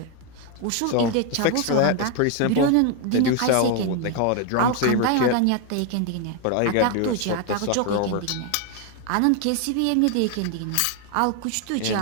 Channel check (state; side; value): different; both; correlation 0.01